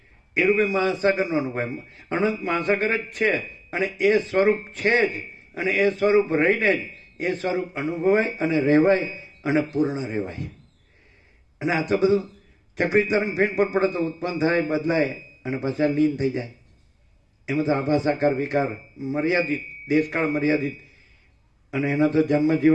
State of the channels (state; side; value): identical; both; correlation 1.00